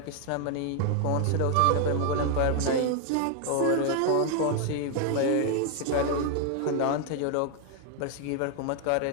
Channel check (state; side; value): different; both; correlation 0.00